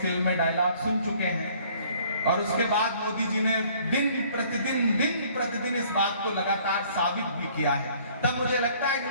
फिल्म में डायलॉग सुन चुके हैं। और उसके बाद मोदी जी ने दिन प्रतिदिन इस बात को लगातार साबित भी किया है। तब मुझे लगता है कि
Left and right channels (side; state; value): both; inverted; correlation -0.57